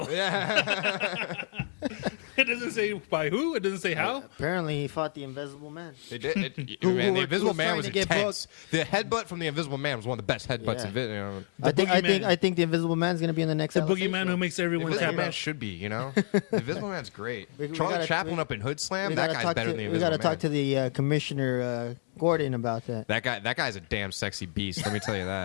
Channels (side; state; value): right; silent; digital silence